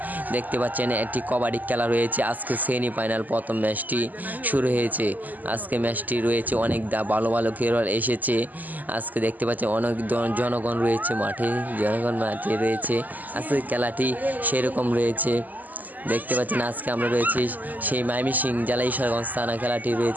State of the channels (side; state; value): left; late; 0.082 ms